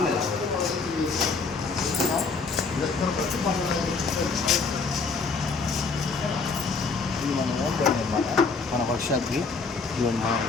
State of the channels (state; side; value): quieter; right; 4.5 dB